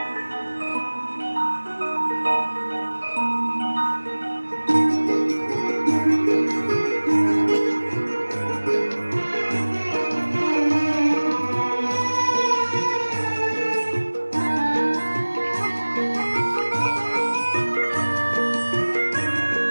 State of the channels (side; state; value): both; inverted; correlation -1.00